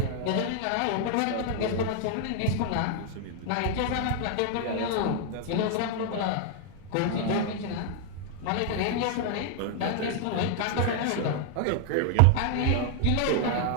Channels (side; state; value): both; different; correlation 0.00